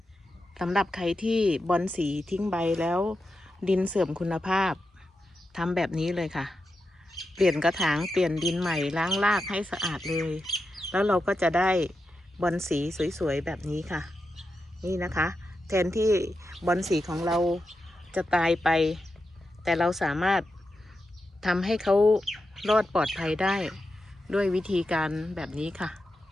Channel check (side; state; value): both; normal; correlation 0.89